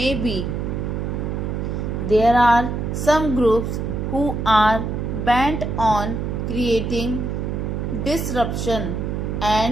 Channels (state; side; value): noise; right; hum, 2 dB below the sound